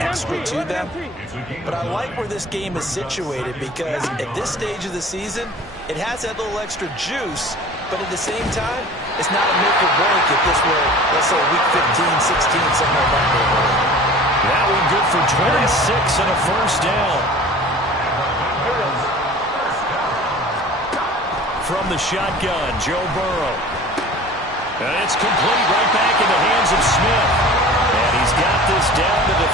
to them. But I like where this game is situated because at this stage of the season, it has that little extra juice. But at the same time, it's not a make or break if this were, let's say, week 15, 16, something like that. That one good for 26 and a 1st down. From the shotgun, Joe Burrow. And it's complete right back in the hands of Smith. And he's got this down to the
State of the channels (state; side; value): normal; both; correlation 0.42